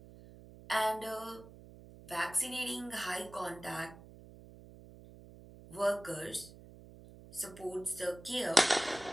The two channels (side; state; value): right; noise; hum, 18 dB below the sound